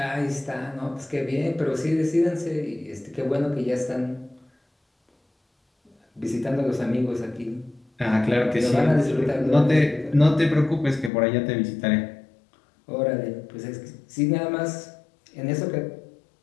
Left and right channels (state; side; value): drops out; right; at 11.1 s